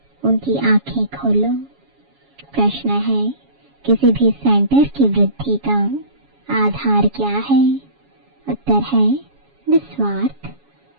उनकी आंखें खोलो। प्रश्न है, किसी भी सेंटर की वृद्धि का आधार क्या है? उत्तर है निस्वार्थ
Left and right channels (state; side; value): late; left; 7.2 ms